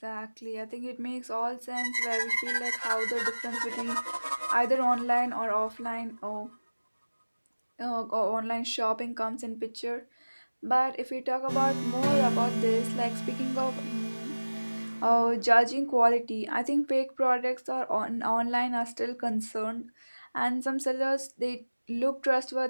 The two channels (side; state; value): both; inverted; correlation -1.00